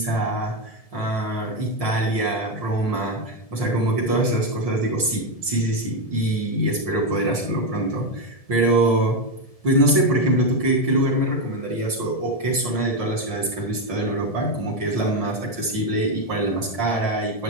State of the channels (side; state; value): right; late; 1.7 ms